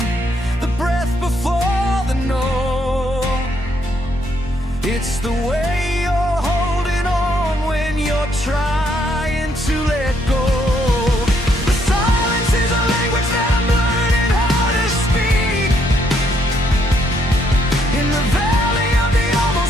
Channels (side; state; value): both; normal; correlation 0.72